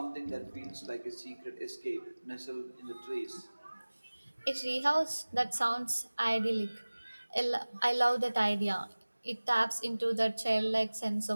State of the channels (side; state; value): both; inverted; correlation -1.00